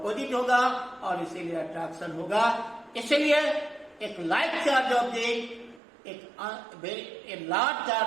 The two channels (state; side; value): drops out; left; at 5.8 s